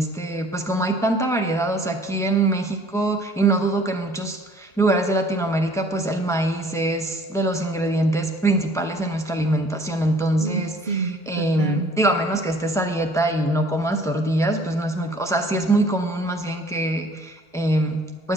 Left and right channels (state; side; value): normal; both; correlation 0.55